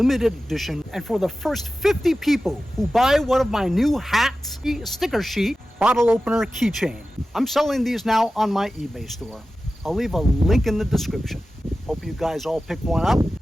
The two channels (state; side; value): normal; both; correlation 0.94